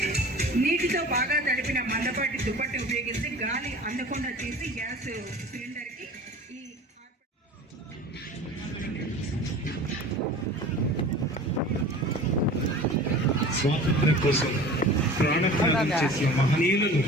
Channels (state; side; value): normal; both; correlation 0.40